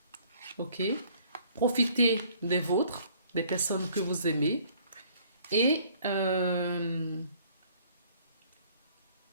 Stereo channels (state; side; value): inverted; both; correlation -0.58